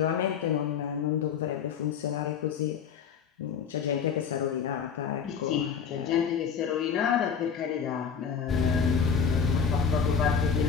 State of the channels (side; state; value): right; quieter; 6.8 dB